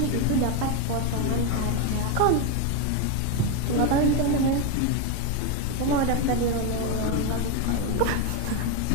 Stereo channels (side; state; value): both; different; correlation 0.02